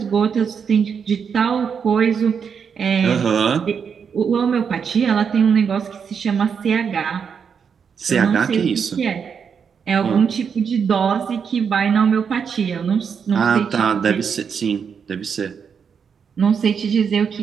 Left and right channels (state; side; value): quieter; left; 6.7 dB